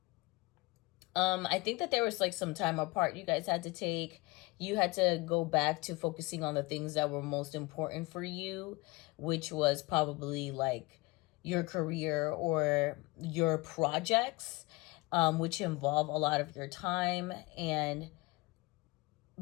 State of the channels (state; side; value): quieter; right; 23.4 dB